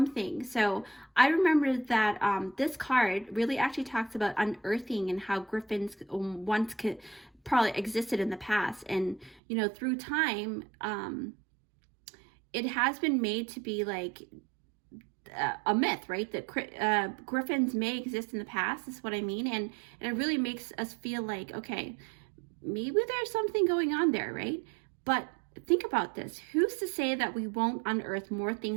So I remember that this card really actually talks about unearthing and how griffins once could probably existed in the past. And, you know, through time, it has been made to be like a myth, right? That griffins may exist in the past, is what I mean. And it really makes us feel like, okay, maybe there's something going on there, right? But think about this. Who's to say that we won't unearth more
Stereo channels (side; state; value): left; drops out; at 9.4 s